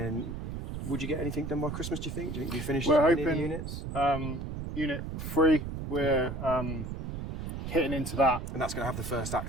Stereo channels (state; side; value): noise; right; rumble, 6 dB below the sound